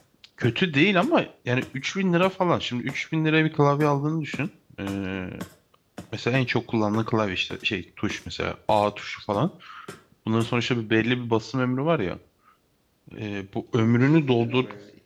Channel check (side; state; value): both; identical; correlation 1.00